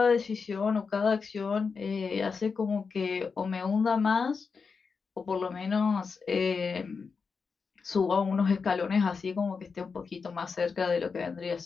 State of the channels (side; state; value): right; quieter; 5.2 dB